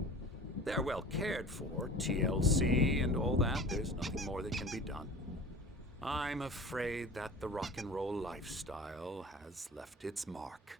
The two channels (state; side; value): normal; both; correlation 0.40